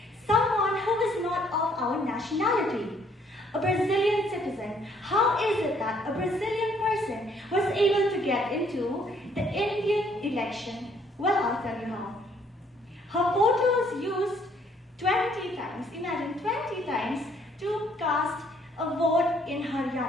someone who is not of our nationality. A Brazilian citizen. How is it that a Brazilian person was able to get into the Indian election? Well, I'll tell you how. Her photo was used 20 times, imagine 20 times, to cast a vote in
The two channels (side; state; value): both; normal; correlation 0.65